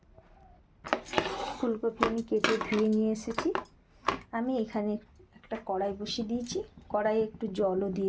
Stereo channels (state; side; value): identical; both; correlation 1.00